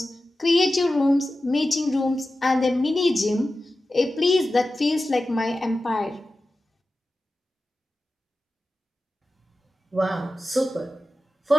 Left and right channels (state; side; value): normal; both; correlation 0.94